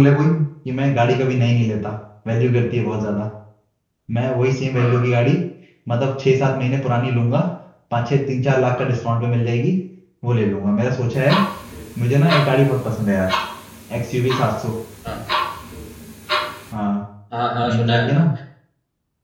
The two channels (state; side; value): identical; both; correlation 1.00